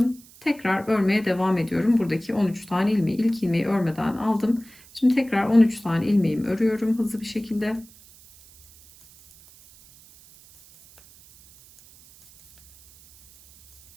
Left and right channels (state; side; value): noise; right; hiss, 25 dB below the sound